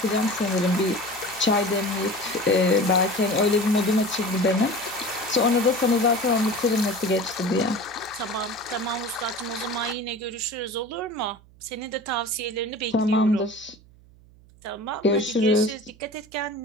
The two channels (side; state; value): right; noise; hum, 26 dB below the sound